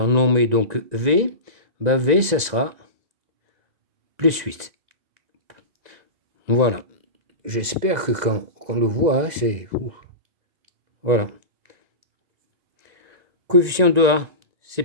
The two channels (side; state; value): left; late; 1.9 ms